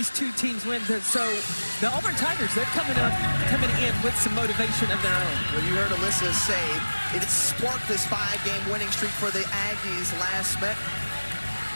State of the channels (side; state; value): both; inverted; correlation -1.00